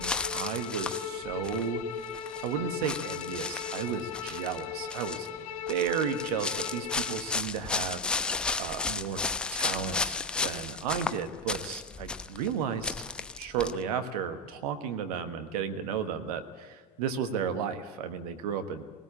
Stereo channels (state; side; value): normal; both; correlation 0.05